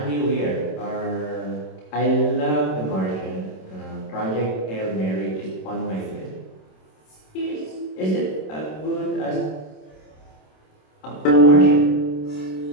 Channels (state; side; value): late; right; 27 ms